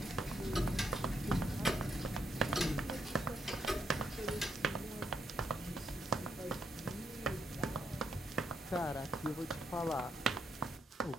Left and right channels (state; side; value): normal; both; correlation 0.77